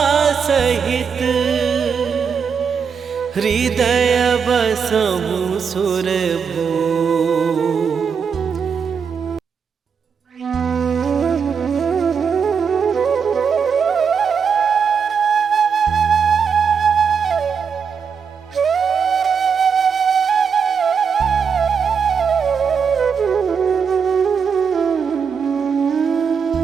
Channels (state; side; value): quieter; left; 6.4 dB